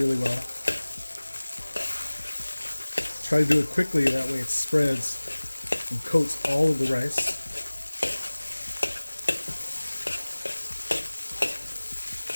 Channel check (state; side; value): inverted; both; correlation -1.00